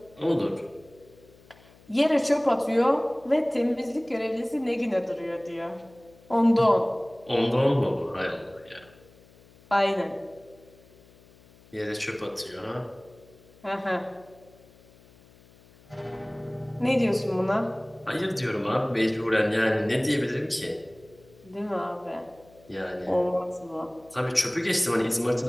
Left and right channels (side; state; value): left; noise; hum, 26 dB below the sound